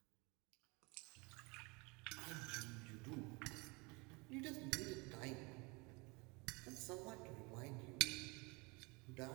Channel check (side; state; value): left; quieter; 27.8 dB